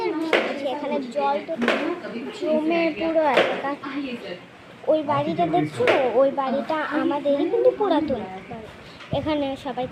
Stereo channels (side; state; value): both; identical; correlation 1.00